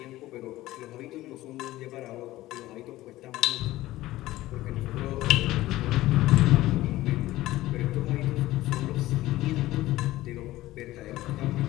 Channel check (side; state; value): right; quieter; 16.5 dB